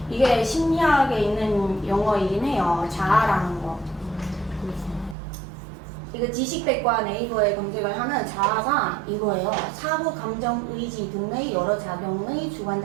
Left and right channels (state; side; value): drops out; left; at 5.2 s